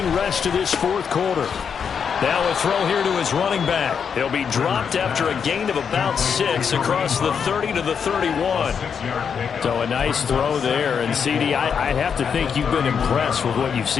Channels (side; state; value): right; quieter; 6.9 dB